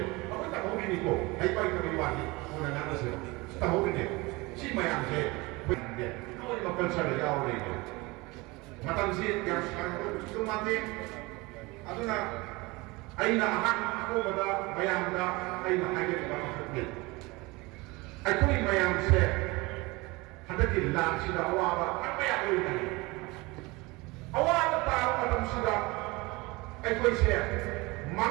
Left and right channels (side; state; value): left; quieter; 23.7 dB